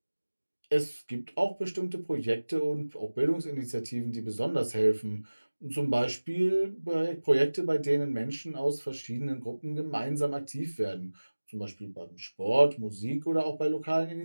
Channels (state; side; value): inverted; both; correlation -1.00